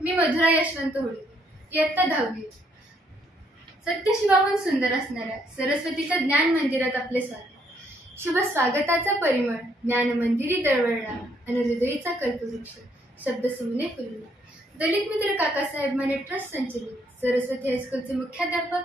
मी मधुरा यशवंत होळकर, इयत्ता 10वी. सत्यशिवाहून सुंदर असणाऱ्या सरस्वतीच्या ज्ञान मंदिरात आपले स्वागत. शुभ स्वागताचा परिमळ ज्ञान मंदिरी दळवळला आणि हृदयीचा कल्पवृक्ष शब्द सुमने फुलला. दलित मित्र काकासाहेब माने ट्रस्ट संचलित सरस्वती हायस्कूलचे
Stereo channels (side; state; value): both; normal; correlation 0.70